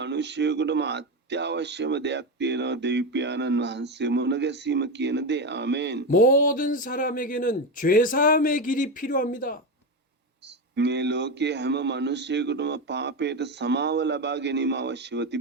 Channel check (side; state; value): both; normal; correlation 0.15